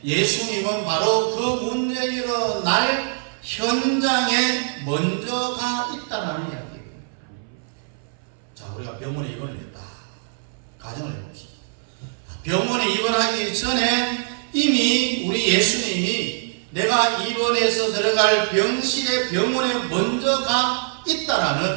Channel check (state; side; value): silent; left; 61 dB below the other